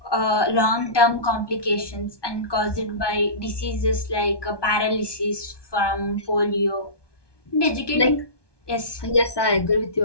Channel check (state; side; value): late; right; 1.2 ms